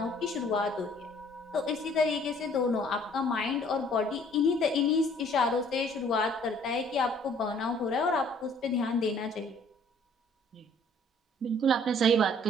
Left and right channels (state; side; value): normal; both; correlation 0.58